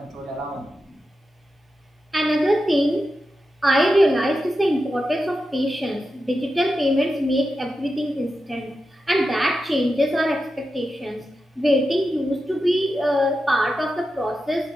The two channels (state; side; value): normal; both; correlation 0.90